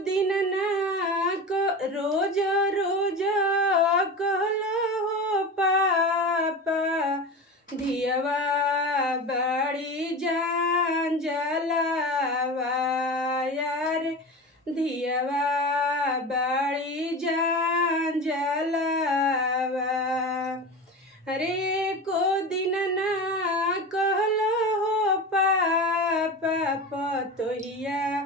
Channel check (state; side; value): normal; both; correlation 0.28